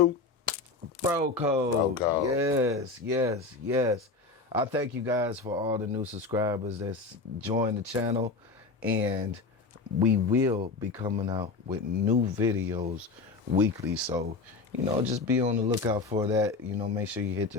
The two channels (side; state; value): right; quieter; 4.0 dB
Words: Bro Code. Bro Code. Yes. I thank you guys for all the new subscribers that's joined the channel, and we will be coming out with new videos weekly. So, just be on the lookout for that. Make sure you hit